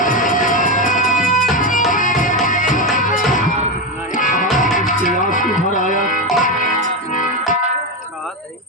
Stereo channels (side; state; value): both; normal; correlation 0.12